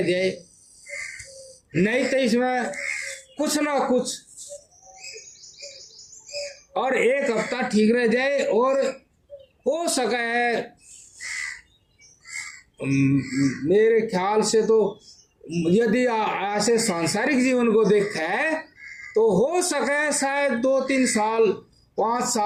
जाए, नहीं तो इसमें कुछ ना कुछ, और एक हफ्ता ठीक रह जाए और हो सका है मेरे ख्याल से तो यदि ऐसे सांसारिक जीवन को देखा है तो हो सके शायद 2-3 साल 5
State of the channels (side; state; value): both; identical; correlation 1.00